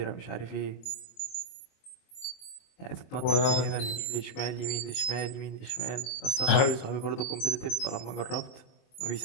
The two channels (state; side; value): late; right; 23 ms